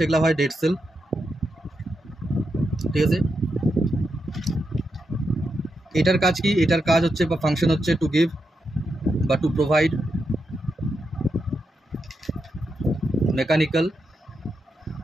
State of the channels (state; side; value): normal; both; correlation 0.85